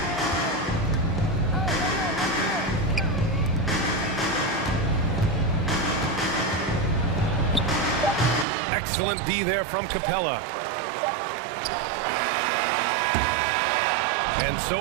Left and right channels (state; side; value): drops out; left; at 8.5 s